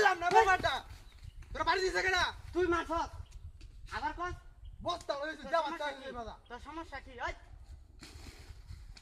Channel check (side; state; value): both; identical; correlation 1.00